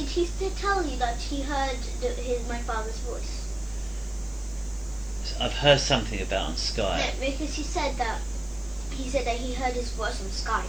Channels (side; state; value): left; noise; hiss, 28 dB below the sound